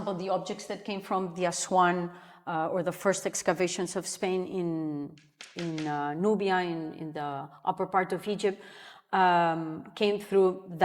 the objects that came from the Aswan or the first excavations of Spain in Nubia, in the upper part of Egypt, came through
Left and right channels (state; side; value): identical; both; correlation 1.00